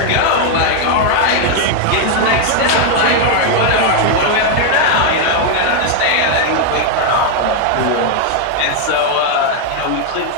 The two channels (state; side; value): different; both; correlation 0.01